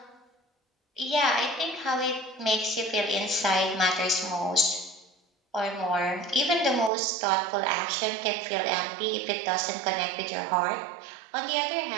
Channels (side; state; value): left; drops out; at 6.9 s